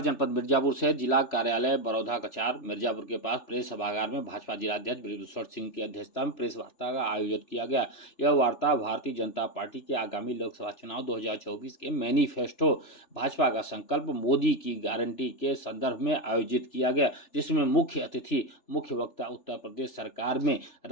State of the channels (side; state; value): right; late; 3.4 ms